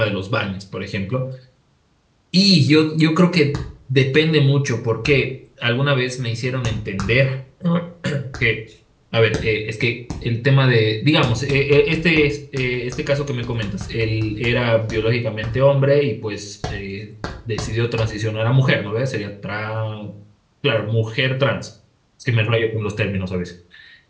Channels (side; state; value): both; identical; correlation 1.00